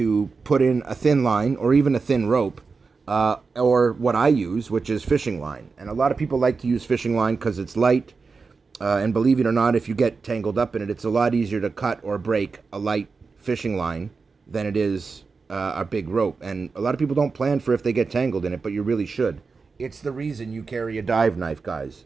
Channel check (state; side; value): quieter; left; 4.6 dB